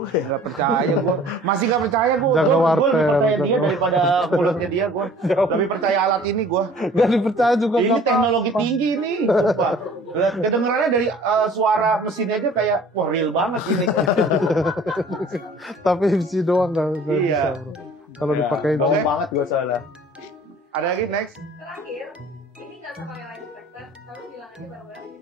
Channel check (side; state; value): both; normal; correlation 0.50